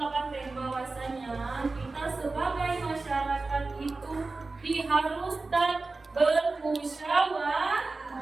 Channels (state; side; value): quieter; left; 3.6 dB